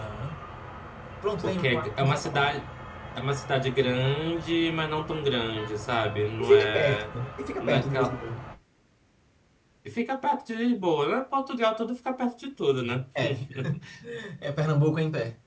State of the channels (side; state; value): both; identical; correlation 1.00